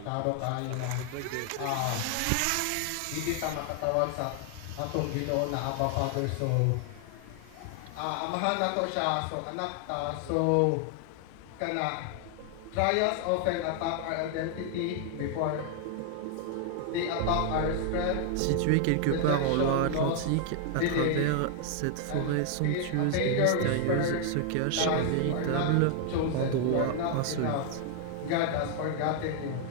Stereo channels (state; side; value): different; both; correlation 0.00